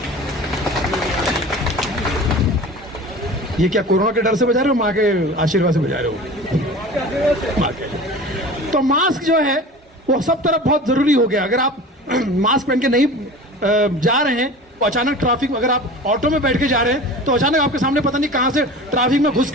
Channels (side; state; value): both; normal; correlation 0.37